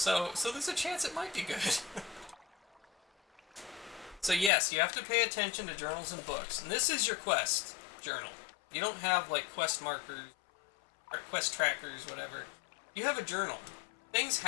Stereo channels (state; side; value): drops out; right; at 4.5 s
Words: there's a chance it might be good. So yes, you have to pay attention to journals and books. And this is your quest journal. You don't have like quest markers, or quest trackers, whatever. You have a journal. Things